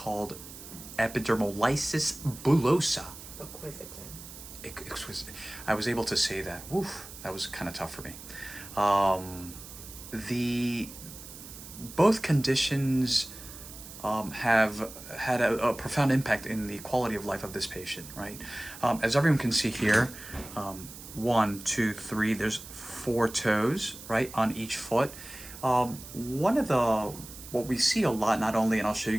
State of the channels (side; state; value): right; noise; hiss, 14 dB below the sound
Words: epidermolysis bullosa. Exquisite. I was able to say that. Oof, that was kind of tough for me. Both conditions have had a profound impact in the quality of life of this patient, right? As everyone can see here, 1, 2, 3, there's 4 toes, right, on each foot. What we see a lot, not only, and I'll show you